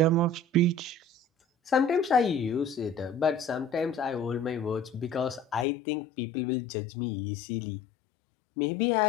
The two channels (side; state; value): right; drops out; at 5.7 s